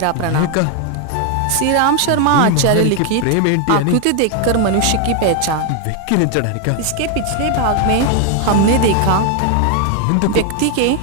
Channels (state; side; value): different; both; correlation 0.00